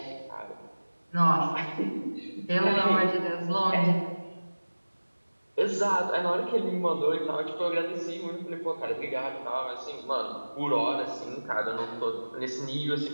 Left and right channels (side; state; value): both; inverted; correlation -1.00